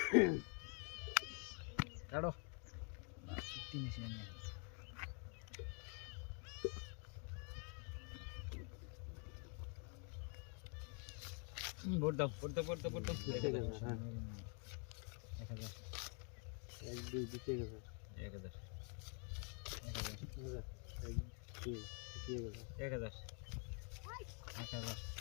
কাটো তিন এসে নিয়ে ভোট দাও 1000 এক দুই দিতে গেছে 1000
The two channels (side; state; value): right; quieter; 39.3 dB